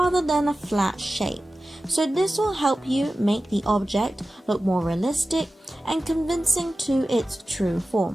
than a flat shape. So this will help you make the object look more realistic and convincing to its true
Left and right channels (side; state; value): both; normal; correlation 0.95